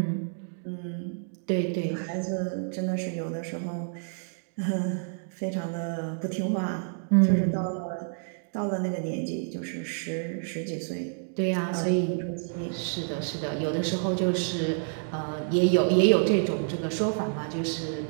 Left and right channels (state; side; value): silent; left; digital silence